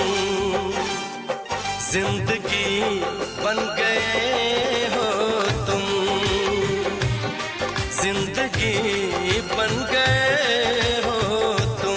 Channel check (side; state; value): both; identical; correlation 1.00